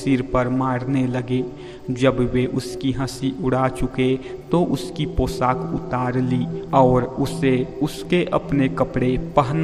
पर मारने लगे। जब वे उसकी हंसी उड़ा चुके तो उसकी पोशाक उतार ली और उसे उसके अपने कपड़े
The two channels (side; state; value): both; identical; correlation 1.00